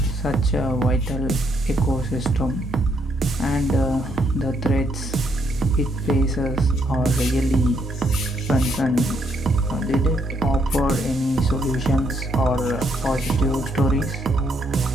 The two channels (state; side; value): normal; both; correlation 0.73